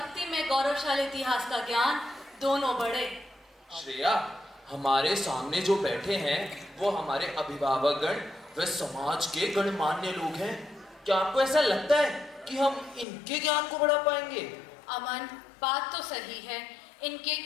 में गौरवशाली इतिहास का ज्ञान दोनों बढ़े। श्रेया, हमारे सामने जो बैठे हैं वो हमारे अभिभावकगण व समाज के गणमान्य लोग हैं। क्या आपको ऐसा लगता है कि हम इनके ज्ञान को बढ़ा पाएंगे? अमन, बात तो सही है। इनके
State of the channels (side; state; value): right; drops out; at 13.1 s